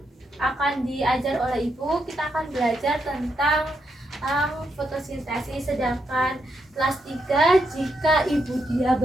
Akan diajar oleh Ibu, kita akan belajar tentang fotosintesis. Sedangkan kelas 3 jika Ibu dia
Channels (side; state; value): both; normal; correlation 0.81